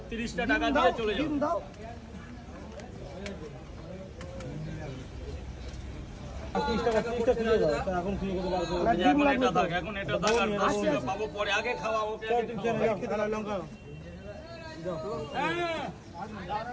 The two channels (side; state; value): both; identical; correlation 1.00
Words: 30টা টাকা দিয়ে চলে যাও। দাও। এখন খুলে দিতে পারবো। এখন এটা থাক আর 10 টাকা পাবো পরে, আগে খাওয়া ওকে। লঙ্কা